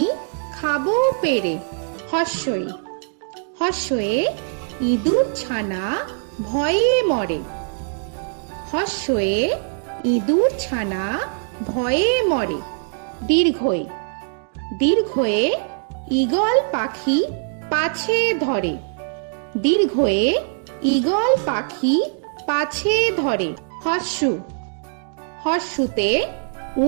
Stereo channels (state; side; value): silent; left; digital silence